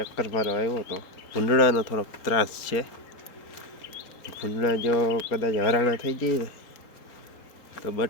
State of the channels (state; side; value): late; right; 4.3 ms